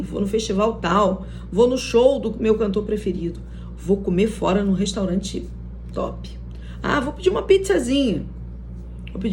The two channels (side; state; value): both; identical; correlation 1.00